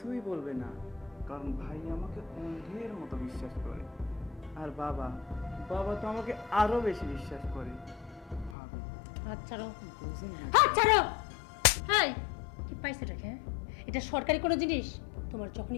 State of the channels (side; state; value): right; drops out; at 8.6 s